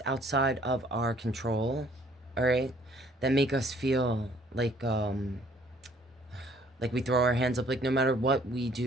outside of our control, all right, that make us feel like we throw our hands up, like no matter what we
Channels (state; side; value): normal; both; correlation 0.59